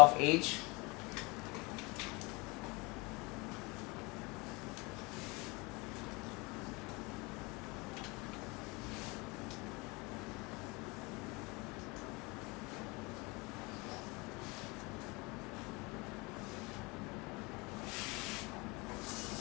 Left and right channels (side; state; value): right; quieter; 26.1 dB